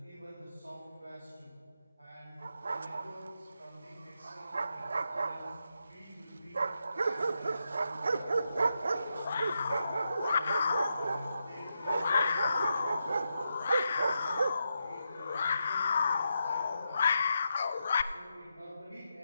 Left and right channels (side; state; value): both; inverted; correlation -0.85